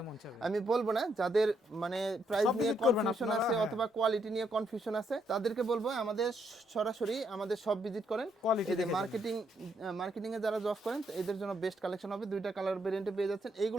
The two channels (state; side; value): normal; both; correlation 0.75